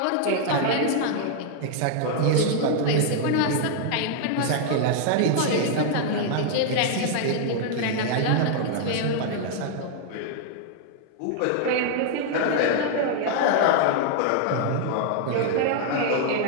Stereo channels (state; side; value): different; both; correlation 0.00